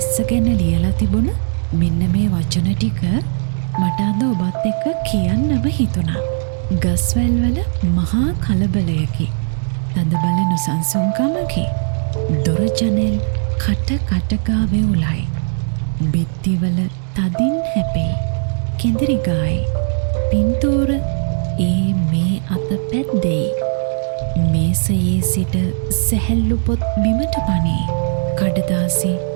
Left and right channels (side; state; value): left; silent; digital silence